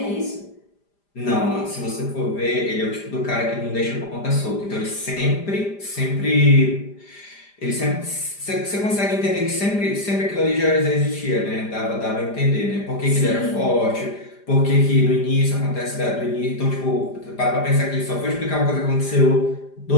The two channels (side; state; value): right; late; 5.0 ms